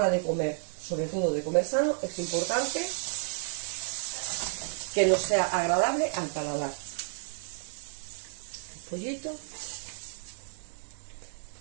de comer, sobre todo de comer sano, es importante que nos sea agradable al paladar. Pollito,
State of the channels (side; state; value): left; silent; 57 dB below the other